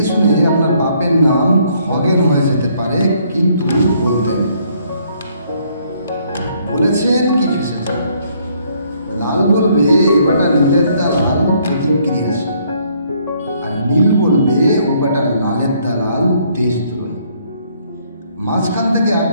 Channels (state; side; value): inverted; both; correlation -0.67